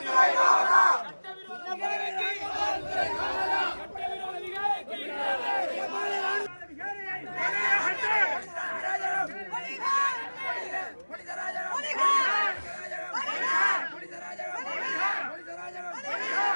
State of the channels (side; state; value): both; inverted; correlation -1.00